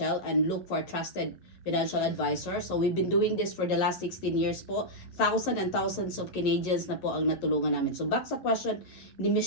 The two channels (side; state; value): right; late; 11 ms